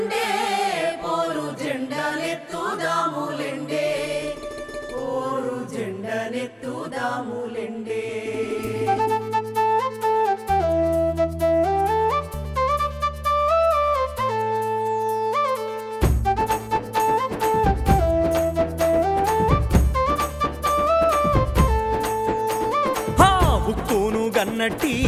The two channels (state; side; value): identical; both; correlation 1.00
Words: పోరు జెండనెత్తుదాములెండే పోరు జెండనెత్తుదాములెండే ఉక్కును గన్నట్టి